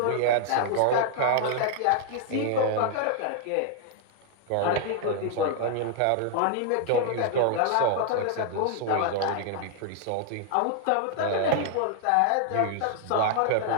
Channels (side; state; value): both; different; correlation 0.00